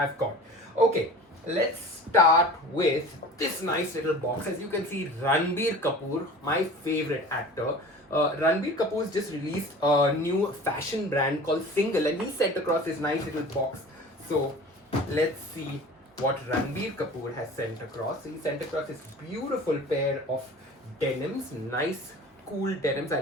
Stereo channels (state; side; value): normal; both; correlation 0.40